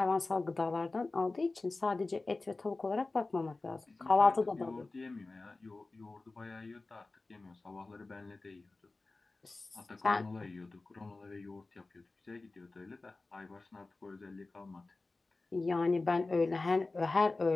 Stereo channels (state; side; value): quieter; right; 3.4 dB